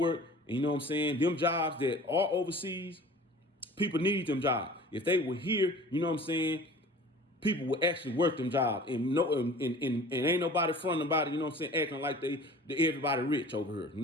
And you know what I'm saying? Them jobs that are overseas, people need them jobs. If they were here, you know what I'm saying? People will actually work them jobs and ain't nobody fronting about it, you know what I'm saying, acting like they everybody rich over here. You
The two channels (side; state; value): both; normal; correlation 0.43